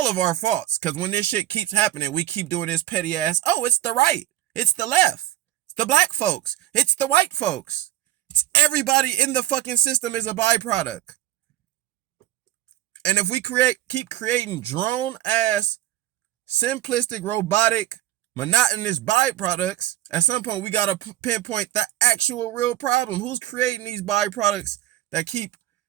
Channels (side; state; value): left; quieter; 14.2 dB